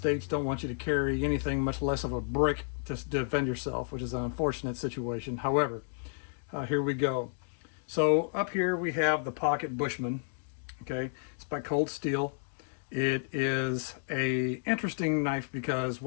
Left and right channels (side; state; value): right; silent; digital silence